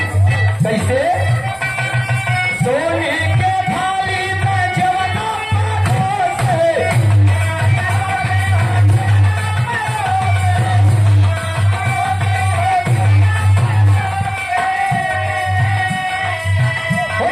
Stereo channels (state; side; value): identical; both; correlation 1.00